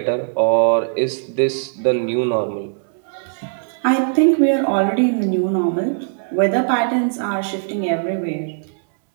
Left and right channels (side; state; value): left; silent; 66 dB below the other